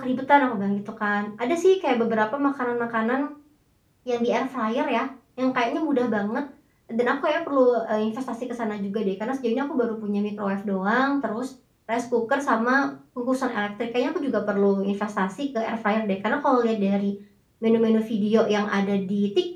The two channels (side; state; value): both; identical; correlation 1.00